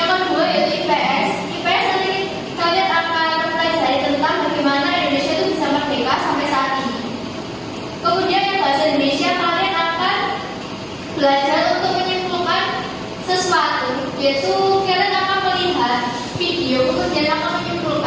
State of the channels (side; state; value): both; identical; correlation 1.00